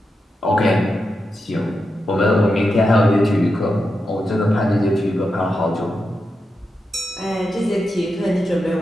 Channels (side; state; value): both; normal; correlation 0.88